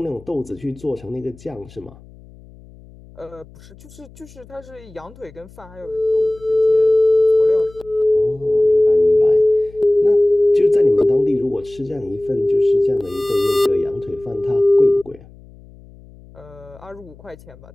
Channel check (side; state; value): left; noise; hum, 23 dB below the sound